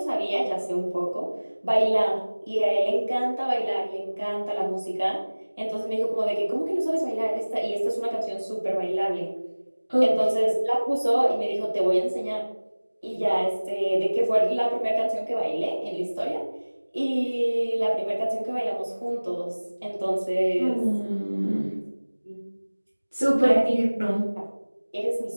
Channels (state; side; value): inverted; both; correlation -1.00